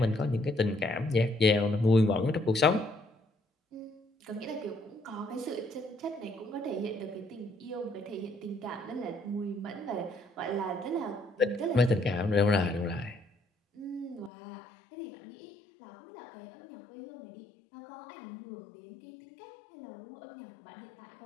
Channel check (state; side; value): drops out; right; at 14.3 s